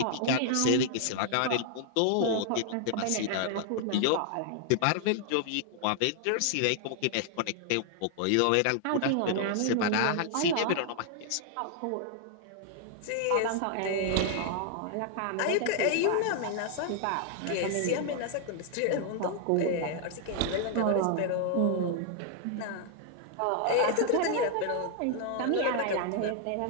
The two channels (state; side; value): different; both; correlation 0.00